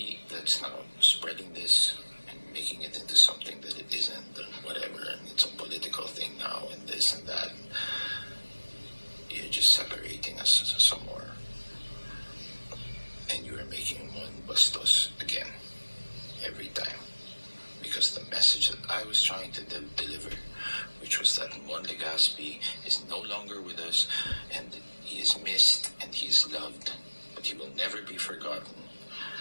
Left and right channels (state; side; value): inverted; both; correlation -1.00